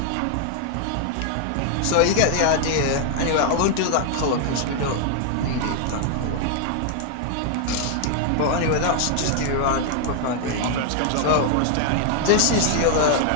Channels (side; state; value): both; different; correlation 0.00